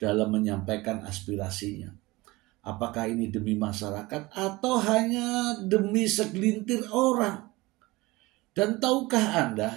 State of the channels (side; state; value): left; quieter; 21.3 dB